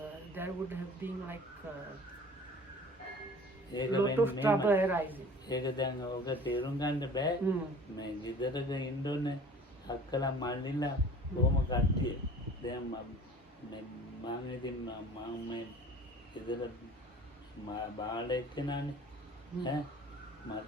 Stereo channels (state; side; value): normal; both; correlation 0.45